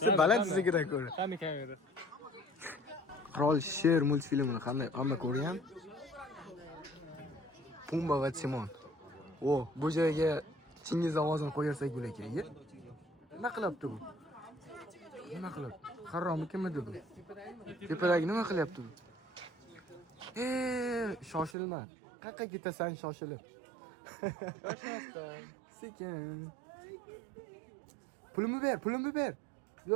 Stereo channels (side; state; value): left; drops out; at 21.6 s